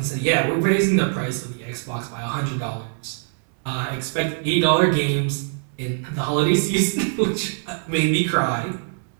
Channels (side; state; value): left; silent; digital silence